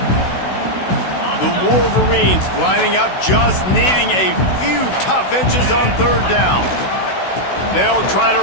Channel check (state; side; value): late; right; 16 ms